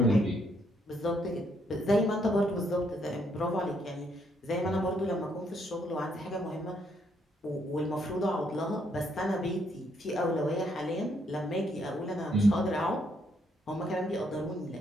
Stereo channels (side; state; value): both; normal; correlation 0.72